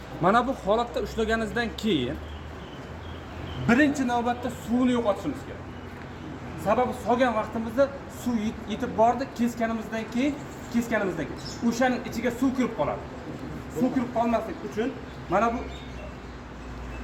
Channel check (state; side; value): identical; both; correlation 1.00